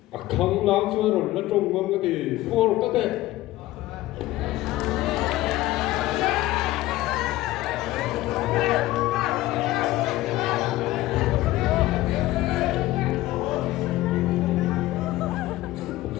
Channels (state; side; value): quieter; right; 16.8 dB